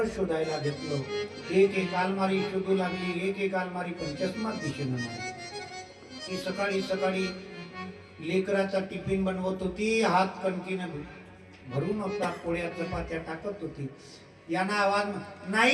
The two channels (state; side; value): identical; both; correlation 1.00